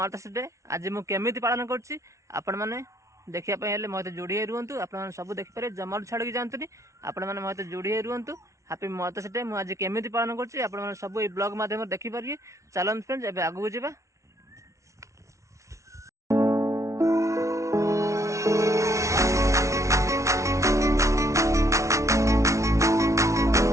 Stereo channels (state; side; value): late; left; 0.14 ms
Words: डे आज मुझे पालन कर देखापी मत जोड़ी रुहतु आप सब देखिपारे जमार छाड़ी जातुनि आपण मैंने मत जोड़ी रुहतु हैप्पी मदर्स डे मुझे केमी पालन कर सब ये ब्लॉग मध्यम देखिपारे चलन फ्रेंड्स एवं आगू जावा